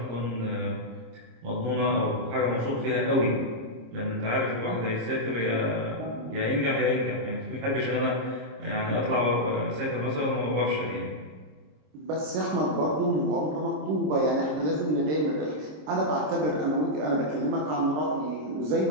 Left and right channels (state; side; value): late; left; 26 ms